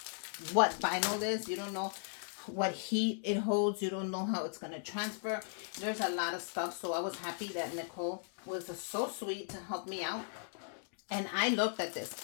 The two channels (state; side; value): silent; right; digital silence